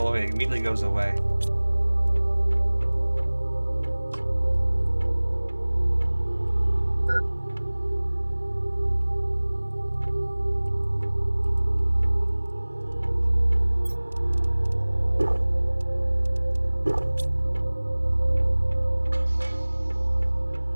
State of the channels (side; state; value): both; inverted; correlation -1.00